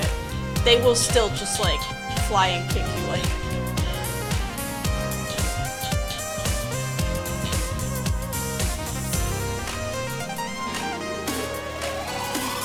They will still just like fly and kick you like.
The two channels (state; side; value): identical; both; correlation 1.00